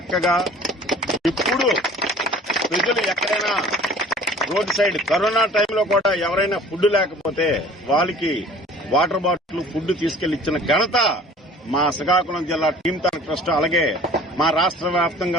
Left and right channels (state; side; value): normal; both; correlation 0.48